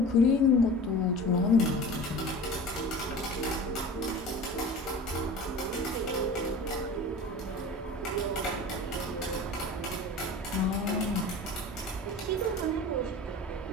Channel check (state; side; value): normal; both; correlation 0.37